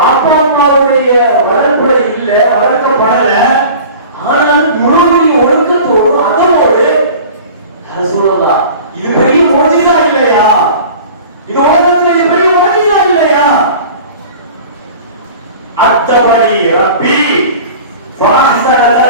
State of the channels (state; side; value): inverted; both; correlation -0.41